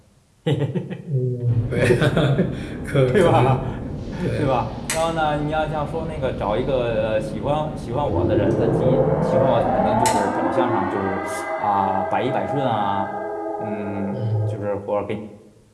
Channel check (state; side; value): identical; both; correlation 1.00